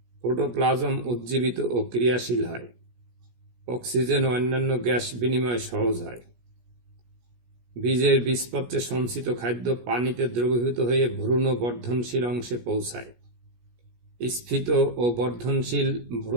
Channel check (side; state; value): left; late; 17 ms